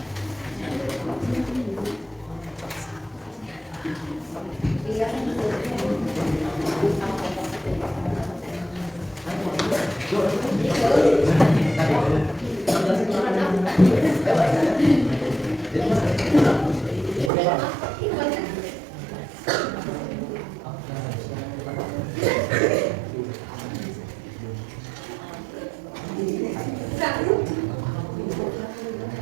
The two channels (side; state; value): left; drops out; at 17.3 s